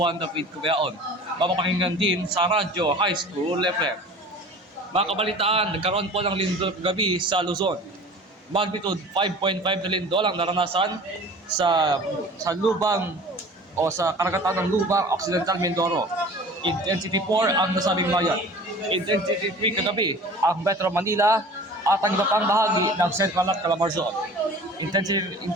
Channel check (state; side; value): normal; both; correlation 0.42